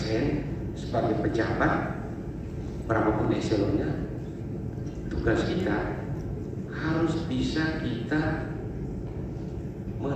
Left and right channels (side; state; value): both; identical; correlation 1.00